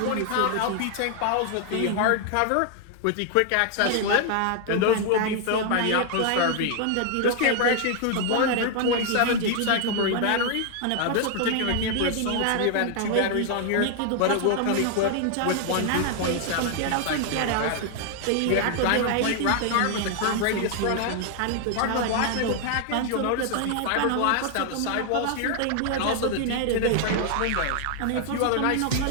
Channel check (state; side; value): different; both; correlation 0.00